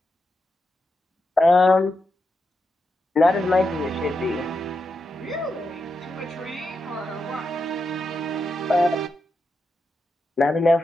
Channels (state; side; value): normal; both; correlation 0.86